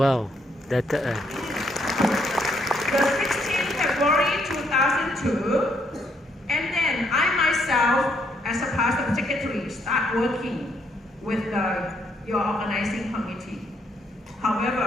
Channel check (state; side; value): normal; both; correlation 0.72